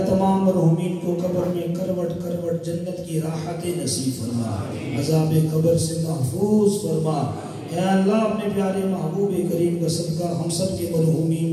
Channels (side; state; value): both; identical; correlation 1.00